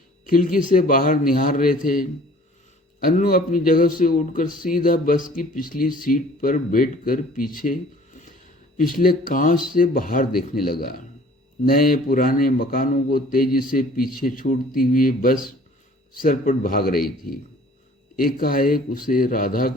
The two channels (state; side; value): normal; both; correlation 0.52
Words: खिड़की से बाहर निहार रहे थे। अन्नू अपनी जगह से उठकर सीधा बस की पिछली सीट पर बैठकर पीछे पिछले कांच से बाहर देखने लगा। नए पुराने मकानों को तेजी से पीछे छोड़ती हुई बस सरपट भाग रही थी। एकाएक उसे राधा